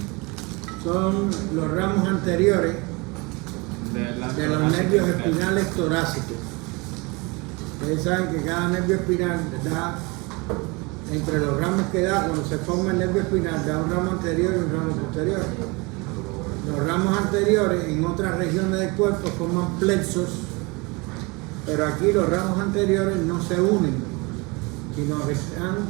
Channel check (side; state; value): left; quieter; 27.0 dB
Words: son los ramos anteriores de los nervios espinales torácicos. Ustedes saben que cada nervio espinal da, entre los ramos que da, cuando se forma el nervio espinal, da un ramo anterior y un ramo posterior. Los ramos anteriores en otras regiones del cuerpo forman plexos, pero aquí los ramos anteriores no se unen, sino que